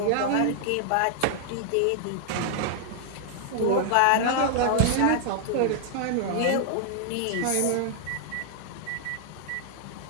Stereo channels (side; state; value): both; different; correlation -0.01